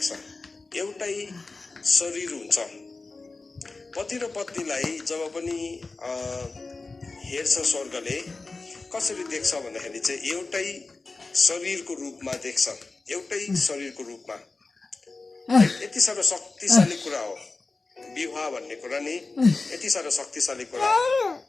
छ, एउटै शरीर हुन्छ। पति र पत्नीलाई जब पनि हेर्छ स्वर्गले कसरी देख्छ भन्दाखेरि चाहिँ एउटै शरीरको रूपमा देख्छ, एउटै शरीरको रूपमा। यति साह्रो शक्तिशाली कुरा हो विवाह भन्ने कुरा नि, यति साह्रो शक्तिशाली कुरा हो।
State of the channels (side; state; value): right; quieter; 3.7 dB